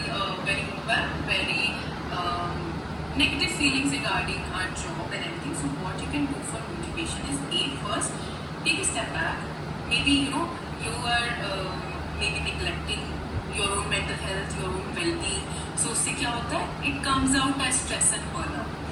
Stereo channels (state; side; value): identical; both; correlation 1.00